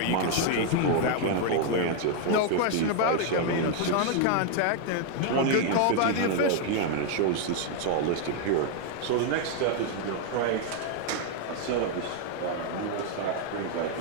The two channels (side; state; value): both; different; correlation 0.00